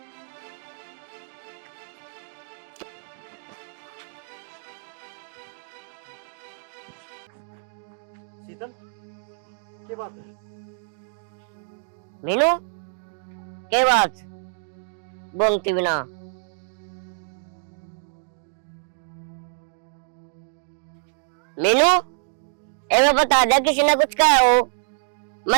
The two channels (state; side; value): silent; left; digital silence